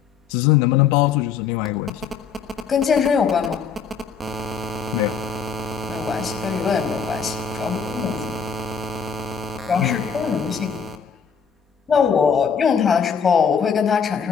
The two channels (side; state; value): right; quieter; 6.5 dB